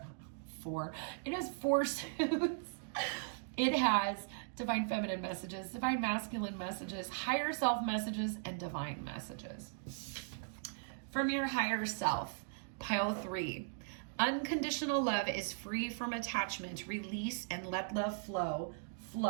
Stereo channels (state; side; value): silent; left; digital silence